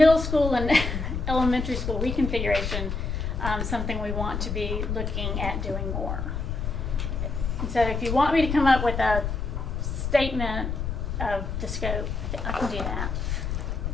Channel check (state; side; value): noise; left; rumble, 3 dB below the sound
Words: school and elementary school reconfiguration something we want to be looking at doing more. And so if you want me to come up with a statement of the scope, I can do that.